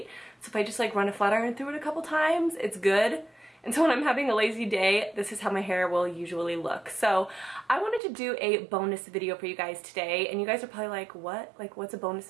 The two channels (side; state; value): left; drops out; at 8.0 s